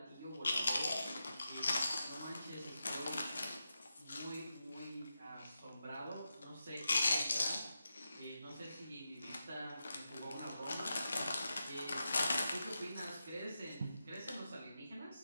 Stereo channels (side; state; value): both; inverted; correlation -0.88